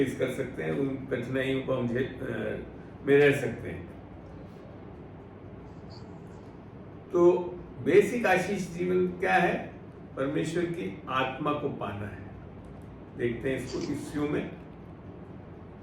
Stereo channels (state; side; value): identical; both; correlation 1.00